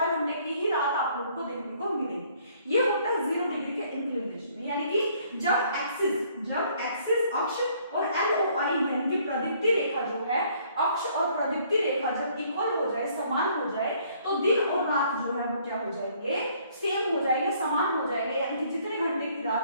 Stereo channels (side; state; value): both; inverted; correlation -0.62